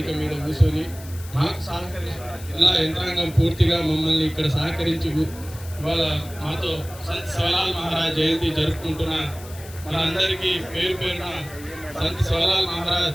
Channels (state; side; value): noise; left; hiss, 18 dB below the sound